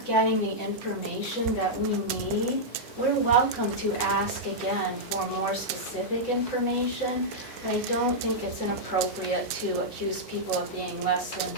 getting the information that we need, we're welcome to ask again for more specific information. I don't think it's inappropriate to accuse people of being less than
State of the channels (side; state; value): both; normal; correlation -0.07